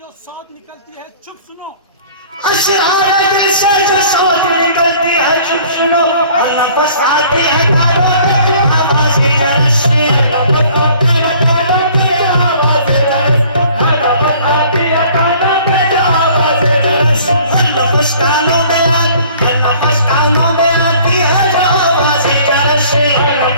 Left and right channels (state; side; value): inverted; both; correlation -0.53